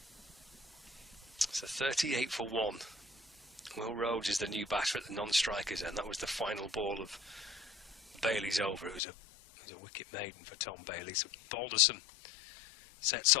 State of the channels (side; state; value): right; drops out; at 9.0 s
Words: So 38 for 1. Will Rhodes is the new batter at the non-strikers, and that was the final ball of Bailey's over. It was a wicket maiden for Tom Bailey. So Balderson sets